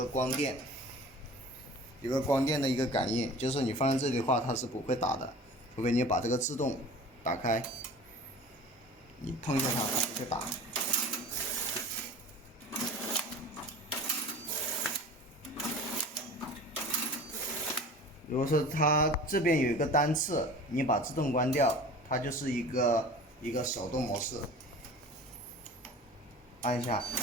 光电，有个光电的一个感应，就是你放在这里的话，它是不会打的，除非你把这个自动打开，你碰一下它，它就会打。如果说它这边有一个单次，你把自动关掉，它就是一个手动模式，按一下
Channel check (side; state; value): both; normal; correlation 0.40